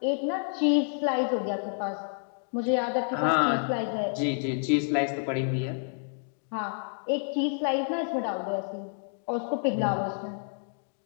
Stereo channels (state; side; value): silent; right; 58 dB below the other